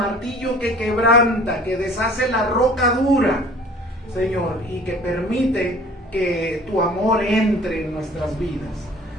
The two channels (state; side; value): normal; both; correlation 0.48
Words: que quebranta, que deshace la roca dura, Señor, y que permite que tu amor entre en nuestras vidas.